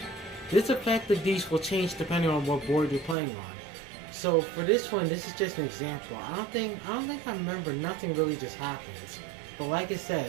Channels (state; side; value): drops out; left; at 3.2 s